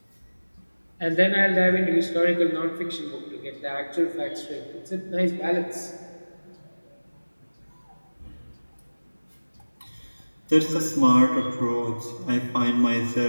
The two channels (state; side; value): inverted; both; correlation -1.00